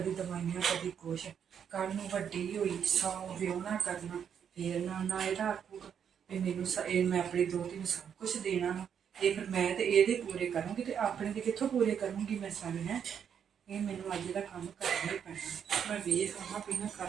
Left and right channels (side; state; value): left; quieter; 8.0 dB